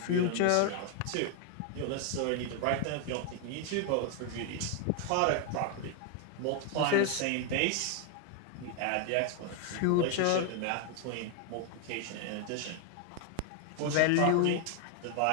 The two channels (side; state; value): both; different; correlation 0.00